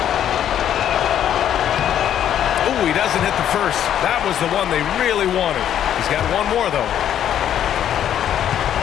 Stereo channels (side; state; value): right; quieter; 10.2 dB